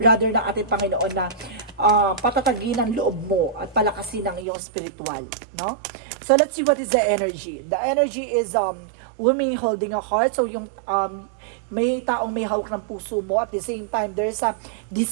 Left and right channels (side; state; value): left; drops out; at 4.5 s